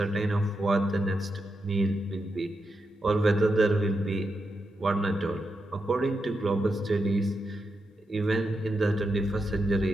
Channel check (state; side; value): normal; both; correlation 0.86